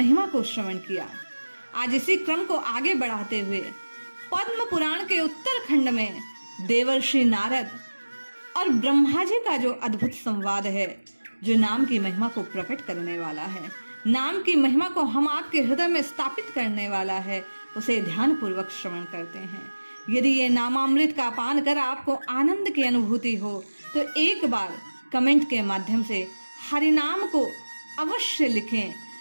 को श्रवण किया। आज इसी क्रम को आगे बढ़ाते हुए पद्म पुराण के उत्तरखंड में देवर्षि नारद और ब्रह्मा जी का जो अद्भुत संवाद है, जो नाम की महिमा को प्रकट करने वाला है, नाम की महिमा को हम आपके हृदय में स्थापित करने वाला है, उसे ध्यान पूर्वक श्रवण करते हैं। यदि ये नामामृत का पान कर आपको आनंद की अनुभूति हो तो एक बार कमेंट के माध्यम से हरिनाम को अवश्य लिखें।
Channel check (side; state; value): both; inverted; correlation -1.00